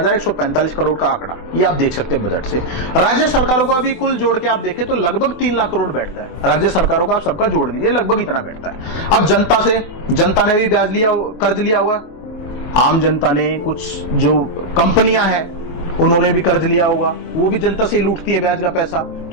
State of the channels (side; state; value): right; late; 24 ms